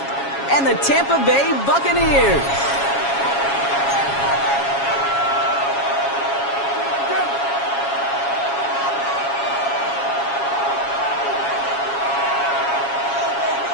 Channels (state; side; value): late; right; 7.3 ms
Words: and the Tampa Bay Buccaneers.